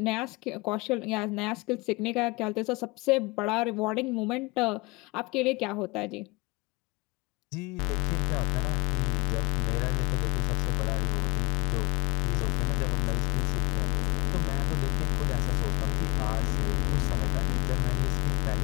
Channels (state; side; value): quieter; right; 24.3 dB